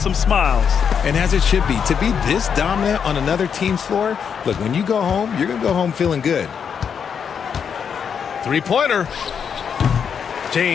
smiles. And as it should be, to be this dominant on another team's floor, look, when you go home, you're going to go home feeling good. Three-pointer.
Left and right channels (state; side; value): quieter; right; 7.1 dB